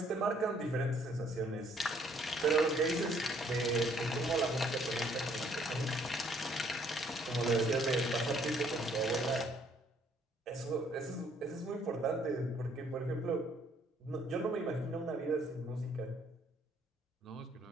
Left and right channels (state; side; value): normal; both; correlation 0.64